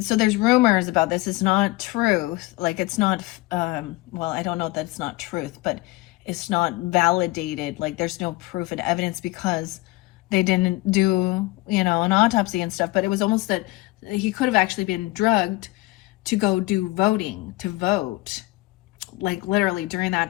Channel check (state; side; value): quieter; right; 20.8 dB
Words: so there's rumors about this. It's not truth, like it's not well, I don't know that it's not truth, but it's not validated, like there's no proof and evidence because they didn't do, an autopsy and stuff. But it was almost that he could have actually been drugged to go do voting, to vote, like literally during that